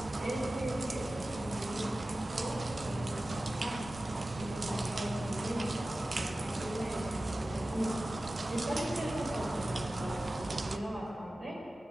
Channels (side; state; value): both; normal; correlation 0.96